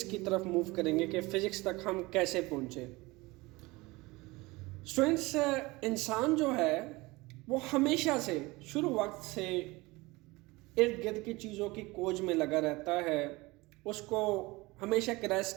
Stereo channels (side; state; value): left; quieter; 22.3 dB